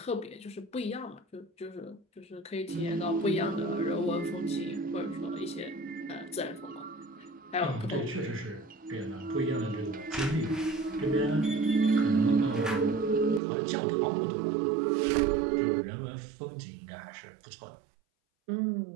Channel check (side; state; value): left; drops out; at 13.4 s